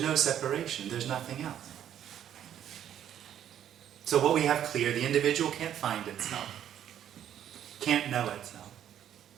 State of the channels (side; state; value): left; quieter; 10.4 dB